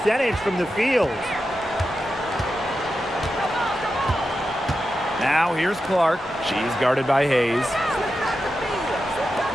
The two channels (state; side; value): normal; both; correlation 0.90